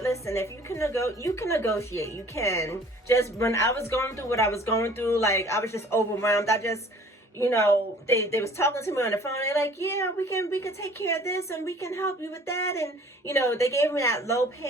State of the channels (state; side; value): normal; both; correlation 0.51